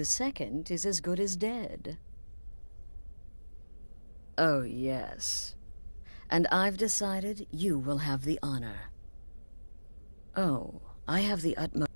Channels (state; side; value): inverted; both; correlation -1.00